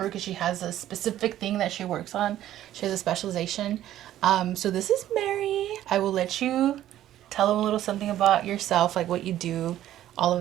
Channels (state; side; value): quieter; left; 12.7 dB